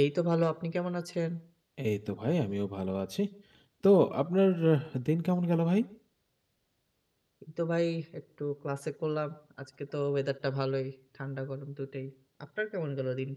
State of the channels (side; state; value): both; identical; correlation 1.00